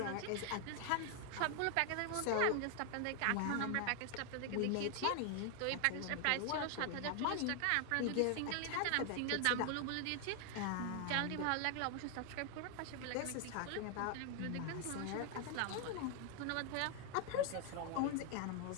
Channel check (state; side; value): different; both; correlation 0.00